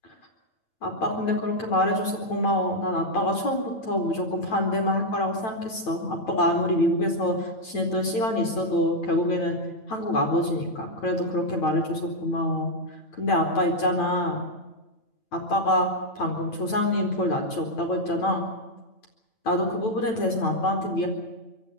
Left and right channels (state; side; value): late; right; 9.0 ms